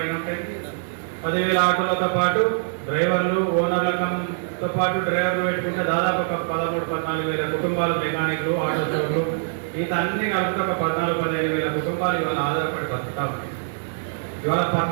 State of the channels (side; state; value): left; silent; digital silence